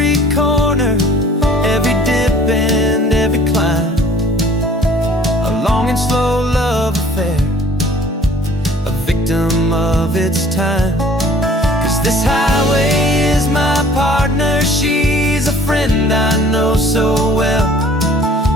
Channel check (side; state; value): both; normal; correlation 0.52